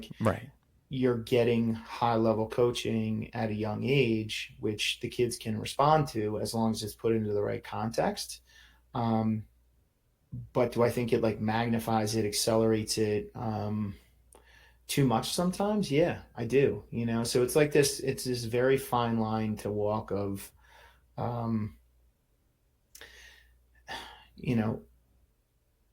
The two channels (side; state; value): both; identical; correlation 1.00